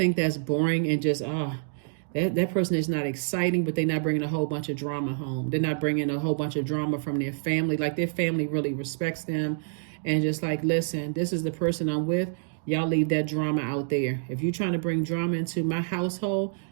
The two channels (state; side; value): silent; left; digital silence